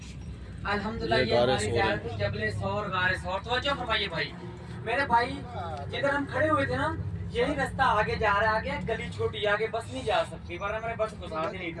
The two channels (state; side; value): identical; both; correlation 1.00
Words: अल्हम्दुलिल्लाह ये हमारी ज़ियारत थी जबल सौर गारे सौर। तवज्जो फरमाइए भाई, मेरे भाई जिधर हम खड़े हुए थे ना, यही रास्ता आगे जा रहा है। आगे गली छोटी, आगे बस नहीं जा सकती, वरना मैंने बस गुजार दी नहीं